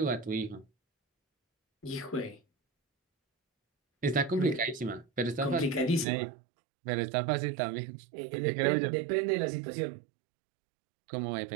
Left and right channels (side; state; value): left; drops out; at 6.1 s